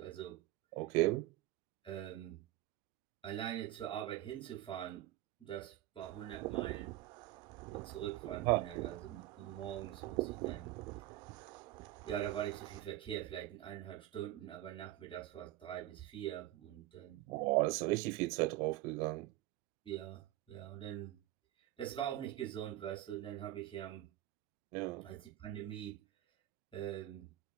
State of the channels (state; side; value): quieter; left; 15.5 dB